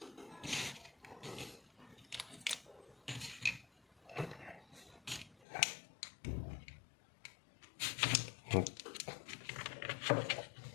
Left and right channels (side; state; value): right; drops out; at 5.5 s